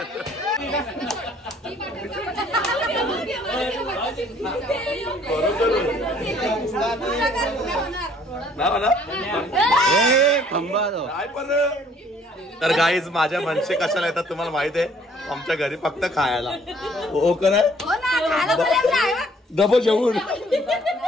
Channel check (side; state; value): both; normal; correlation 0.60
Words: तर गाईज माझ्या मनसे कशाला येतात तुम्हाला माहित आहे आमच्या घरी फक्त खायला हो का डबल जेवून